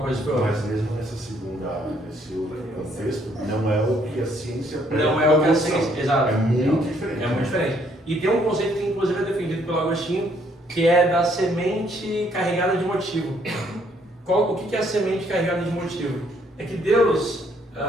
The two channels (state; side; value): normal; both; correlation 0.67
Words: coisa que foi outra. Mas mesmo nesse outro contexto, não é o que a ciência não é o que a ciência, exato. É muito diferente. É muito diferente. E tem um conceito que inclusive é defendido pelo Agostinho, que é da semente carregada de motivo. o que é a semente carregada de motivo? É que Deus,